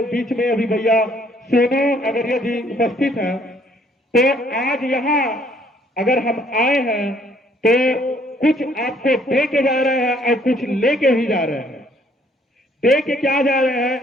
बीच में अभी भैया सोनू अगरिया जी उपस्थित हैं। तो आज यहाँ अगर हम आए हैं तो कुछ आपको दे के जा रहे हैं और कुछ लेके भी जा रहे हैं। दे के क्या जा रहे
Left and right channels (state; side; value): normal; both; correlation 0.63